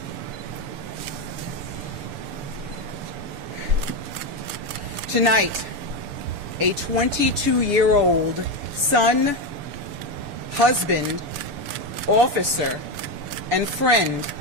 Tonight, a 22-year-old son, husband, officer, and friend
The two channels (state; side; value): late; left; 6.9 ms